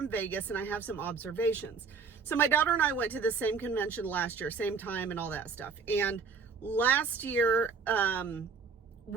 Vegas, and I have some observations. So my daughter and I went to the same convention last year, same time and all that stuff. And last year,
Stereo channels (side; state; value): left; quieter; 5.2 dB